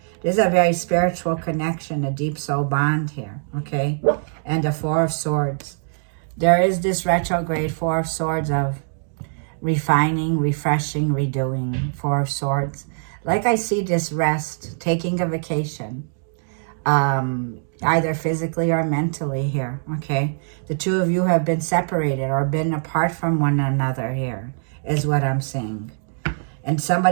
There's a very spiritual connection, a deep soul bond here, okay? And the 4 of Swords. There is this retrograde 4 of Swords of refining, refreshing, redoing. 4 of Swords. Like I see this rest, taking a vacation, either physically or mentally here, okay? The 2 of you have been separated or been apart from one another here, is what I'm seeing. And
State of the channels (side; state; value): left; silent; digital silence